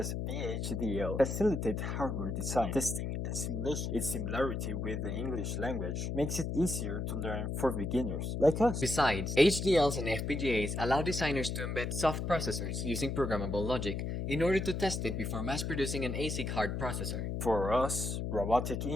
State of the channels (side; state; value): left; noise; hum, 2 dB below the sound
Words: VHDL facilitate hardware design, testing, and simulation. Its similarity with the English language makes it easier to learn for beginners, like us. Besides, HDLs and FPGAs allow designers to embed soft processors using programmable logic in order to test it before mass-producing an ASIC hard processor. For us, robotic